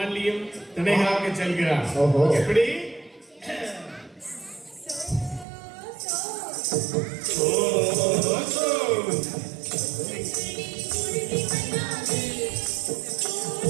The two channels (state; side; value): drops out; left; at 5.5 s